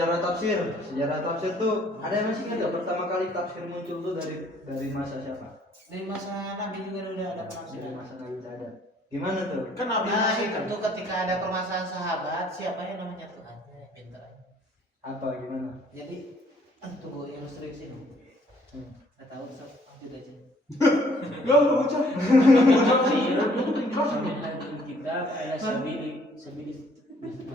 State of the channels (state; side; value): normal; both; correlation 0.61